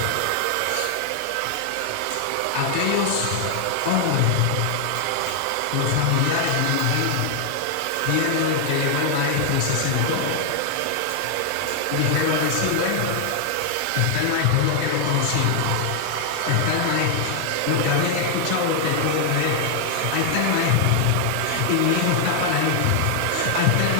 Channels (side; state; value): both; different; correlation 0.00